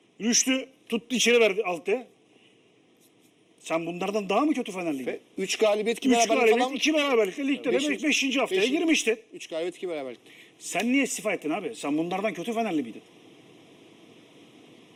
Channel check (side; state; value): both; identical; correlation 1.00